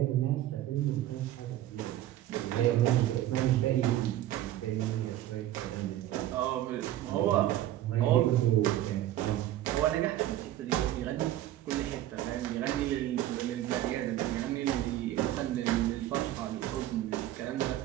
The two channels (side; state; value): left; quieter; 13.6 dB